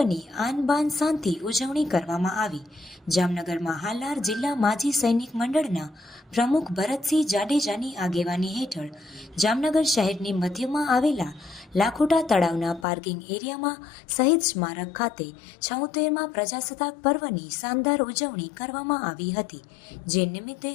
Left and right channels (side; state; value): right; drops out; at 12.9 s